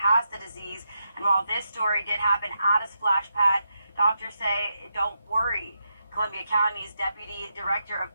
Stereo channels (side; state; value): both; inverted; correlation -0.84